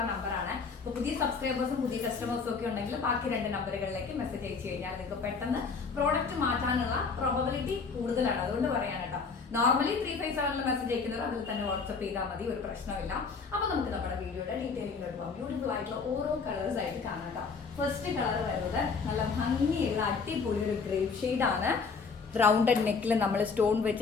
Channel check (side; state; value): right; quieter; 5.0 dB